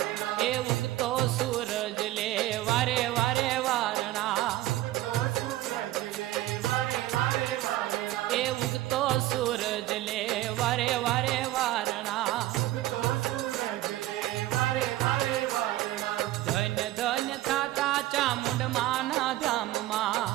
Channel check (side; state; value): left; quieter; 16.0 dB